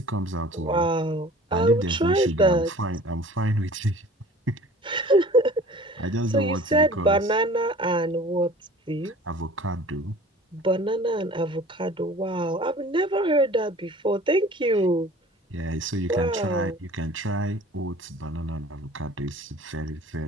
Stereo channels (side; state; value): both; normal; correlation 0.46